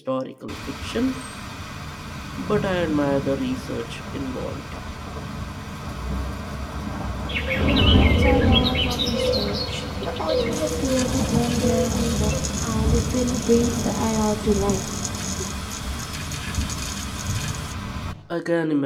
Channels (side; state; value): both; identical; correlation 1.00